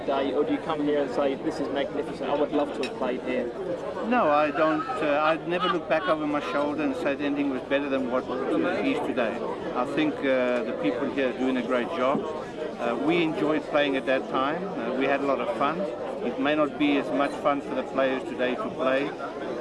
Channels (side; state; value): both; identical; correlation 1.00